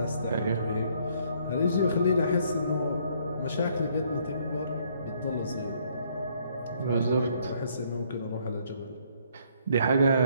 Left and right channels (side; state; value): both; inverted; correlation -0.66